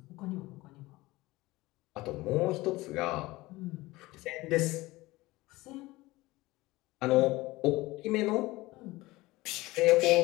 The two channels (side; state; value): right; quieter; 19.9 dB